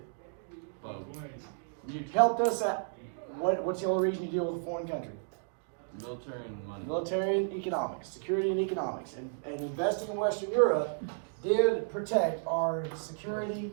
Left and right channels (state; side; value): silent; left; digital silence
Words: Helped us out. What's the only reason you deal with a foreign country? Military and money. Military and economics, security and economics, and investing in Western Europe did protect our